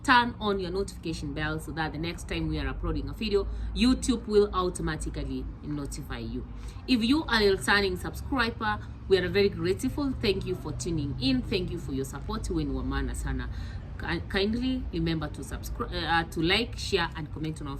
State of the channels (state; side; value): identical; both; correlation 1.00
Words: Turn on your notification bell so that the next time we are uploading a video, YouTube will automatically notify you. If you are a returning subscriber, we are very grateful. Thank you for tuning in. Thank you for your support. Sana. Kindly remember to subscribe, to like, share, and comment on our